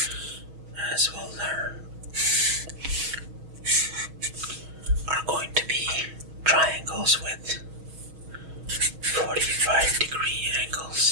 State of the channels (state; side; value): late; left; 6.3 ms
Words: as we'll learn, are going to be triangles with 45-degree